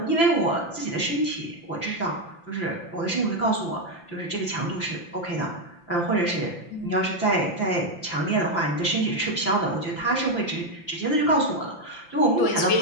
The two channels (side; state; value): right; late; 5.9 ms